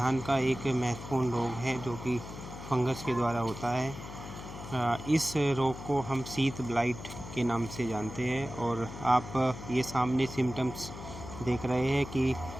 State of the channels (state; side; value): noise; left; hum, 11 dB below the sound